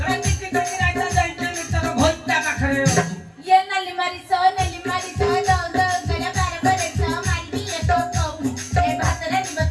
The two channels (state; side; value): identical; both; correlation 1.00